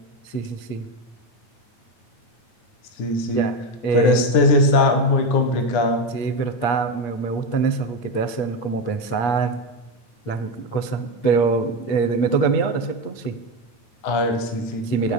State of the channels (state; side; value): late; right; 9.7 ms